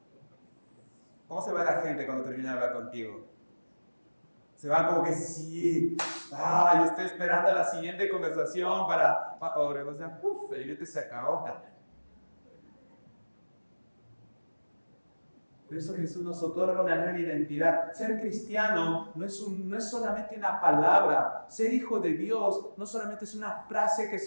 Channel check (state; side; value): inverted; both; correlation -1.00